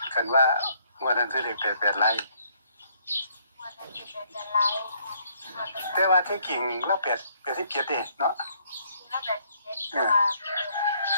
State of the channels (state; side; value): inverted; both; correlation -0.67